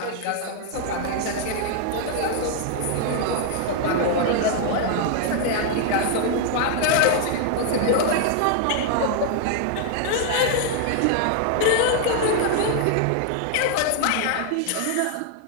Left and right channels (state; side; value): different; both; correlation 0.00